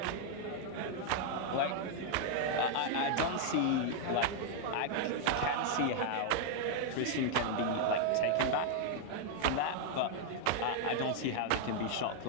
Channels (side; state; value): both; different; correlation 0.00